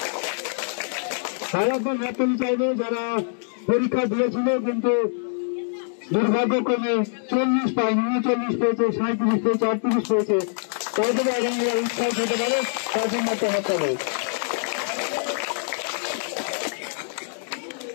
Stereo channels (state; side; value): silent; right; digital silence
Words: ভারতের হাততালি চাইবে যারা পরীক্ষা দিয়েছিল কিন্তু দুর্ভাগ্যক্রমে 40 পায়নি, 39 পেয়েছে, 37 পেয়েছে, 38 পেয়েছে, তাদের আগামী উৎসাহ হতে পারে, তার জন্য একটা হাততালি।